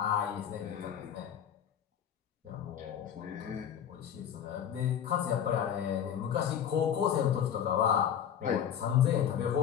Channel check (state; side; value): quieter; right; 9.0 dB